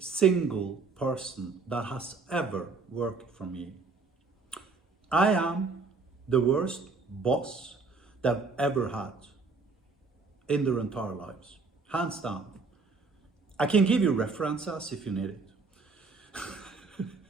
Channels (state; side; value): quieter; left; 4.2 dB